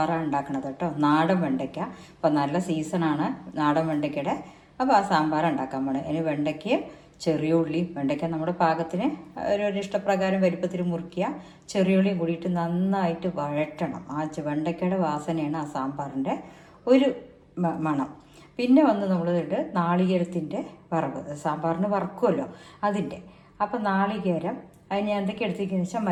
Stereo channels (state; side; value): identical; both; correlation 1.00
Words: ഉണ്ടാക്കുന്നത് കേട്ടോ. നാടൻ വെണ്ടയ്ക്ക. അപ്പം നല്ല സീസണാണ് നാടൻ വെണ്ടയ്ക്കയുടെ. അപ്പോൾ ആ സാമ്പാർ ഉണ്ടാക്കാൻ പോണേ. അതിന് വെണ്ടയ്ക്കയും ചെറിയ ഉള്ളി, വെണ്ടയ്ക്ക നമ്മുടെ പാകത്തിന് ഒരു ഇഷ്ടപ്രകാരം വലുപ്പത്തിൽ മുറിക്കുക. ചെറിയ ഉള്ളിയും കൂടിയിട്ട് നന്നായിട്ട് വഴറ്റണം. ആ വെണ്ടയ്ക്കയുടെ വാസനയാണ് ആ സാമ്പാറിൻ്റെ ഒരു മണം. പിന്നെ വന്ന് നമ്മളിട്ട് നാളികേരത്തിൻ്റെ വറവ്, സാമ്പാറിന് വറക്കുമല്ലോ അതിൻ്റെ. അപ്പം നാളികേരം അതിന് എന്തൊക്കെ എടുത്തിരിക്കുന്നത് വെച്ചാൽ